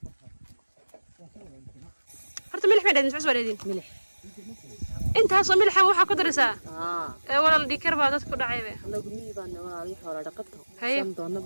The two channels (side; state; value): both; inverted; correlation -1.00